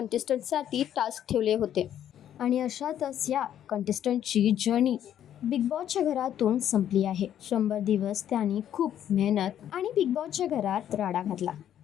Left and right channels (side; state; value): right; quieter; 10.5 dB